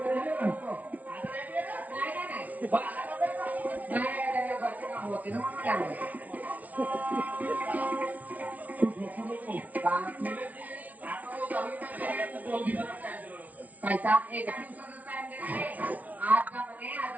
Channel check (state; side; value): late; left; 0.072 ms